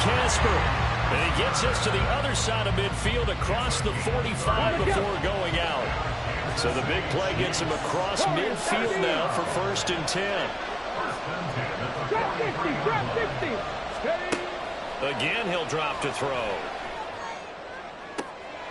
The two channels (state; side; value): identical; both; correlation 1.00